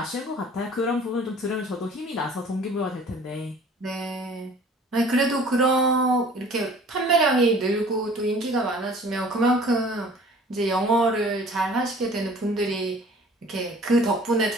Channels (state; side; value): normal; both; correlation 0.50